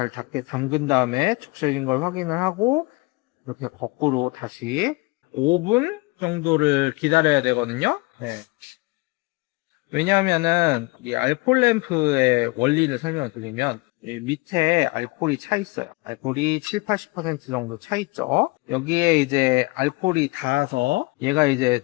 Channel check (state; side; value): quieter; right; 25.1 dB